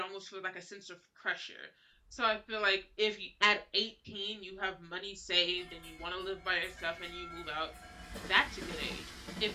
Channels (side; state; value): both; identical; correlation 1.00